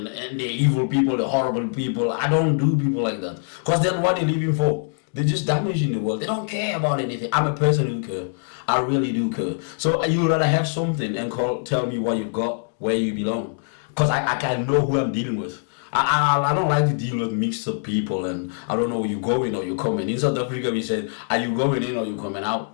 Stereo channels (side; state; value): right; silent; digital silence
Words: the evil people, the horrible people. I don't do people like that. Because then what they're living for? They're just damaging the world. They don't care about anything. I'm a person who cares. I really do care. So you'd rather have something and tell me what you've got, where you belong. Because I can know who I'm dealing with. I don't like to deal with mixed up people, and I don't know where you're going or you're coming. In South Africa, we said, are you going in or you coming